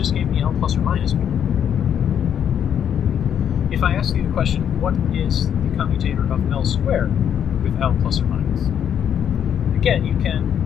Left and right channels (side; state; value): right; quieter; 8.9 dB